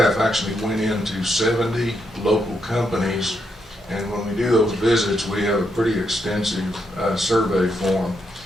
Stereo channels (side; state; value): both; normal; correlation 0.80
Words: actually went into 70 local companies, and when we do those visits, we have a pretty extensive survey form,